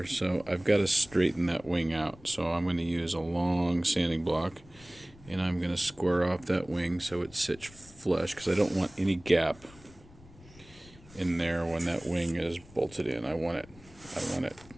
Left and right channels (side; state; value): left; noise; rumble, 22 dB below the sound